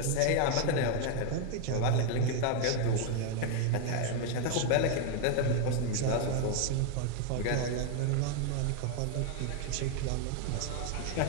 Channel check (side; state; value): both; different; correlation 0.01